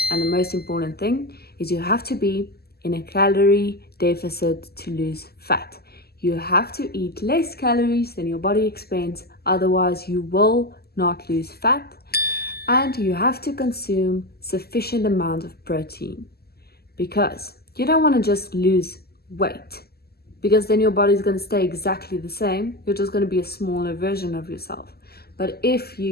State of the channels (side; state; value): right; late; 0.46 ms